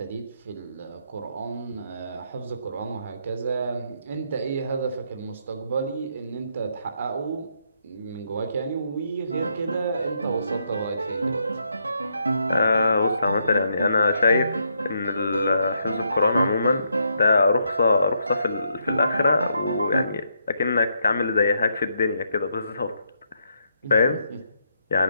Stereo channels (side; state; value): both; inverted; correlation -0.77